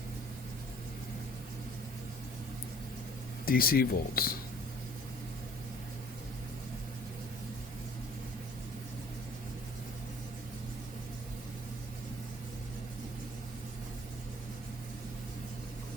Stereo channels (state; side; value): normal; both; correlation 0.53